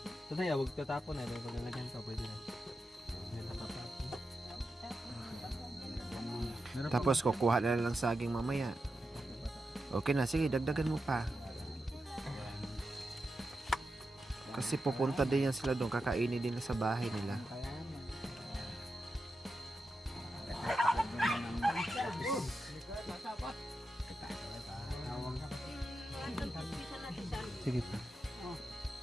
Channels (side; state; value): both; normal; correlation 0.89